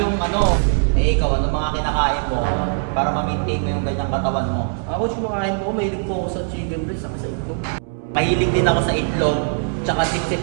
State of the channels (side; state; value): left; silent; digital silence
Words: yung Eh ikaw, ano mga kinakain mo para ma-maintain mo yung ganyang katawan mo? Coach, kumakain ko, mahilig po ako sa chicken breast, saka sa itlog. Mahilig din ako sa itlog, tsaka